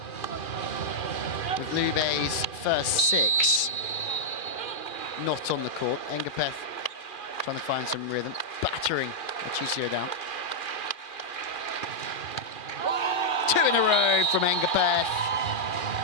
with Lube's first six not on the court. Engapeth trying to find some rhythm, battering Machisio down. Two in a row from Engapeth.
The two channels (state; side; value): late; right; 2.4 ms